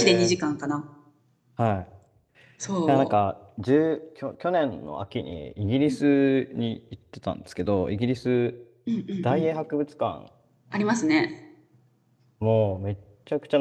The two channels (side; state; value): both; identical; correlation 1.00